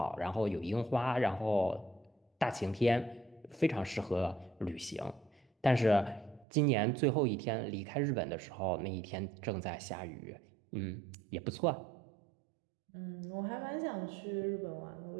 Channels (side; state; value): left; drops out; at 6.5 s